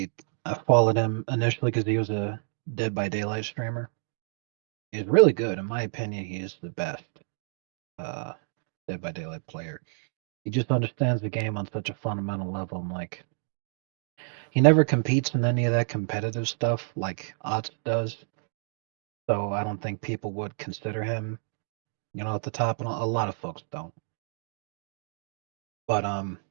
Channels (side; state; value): left; silent; digital silence